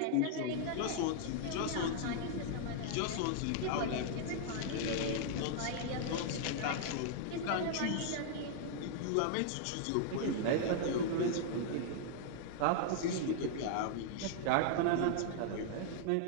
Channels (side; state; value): both; different; correlation 0.00